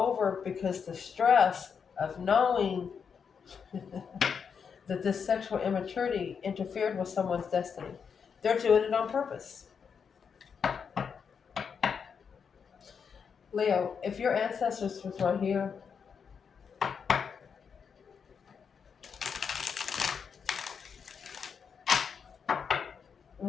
because the stress of knowing that this sexual immaturity interfered with someone's destiny. They're doing it on purpose. Leo, if your ancestors was right here,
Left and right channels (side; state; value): right; quieter; 6.5 dB